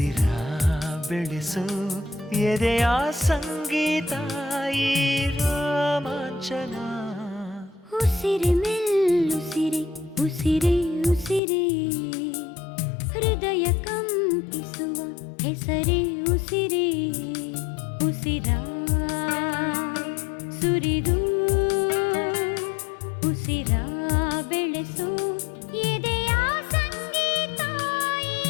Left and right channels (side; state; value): right; drops out; at 11.4 s